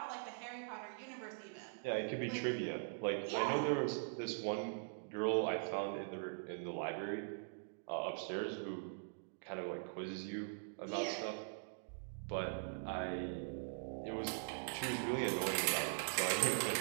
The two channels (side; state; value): left; silent; digital silence